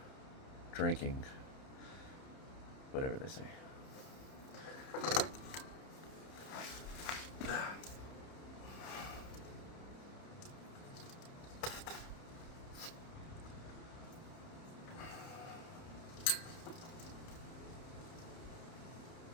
drinking. Whatever they say.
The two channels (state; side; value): late; right; 30 ms